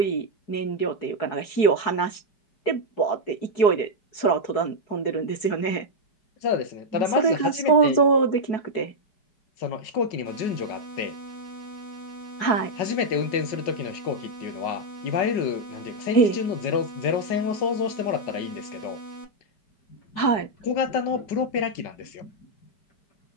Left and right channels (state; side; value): late; right; 4.7 ms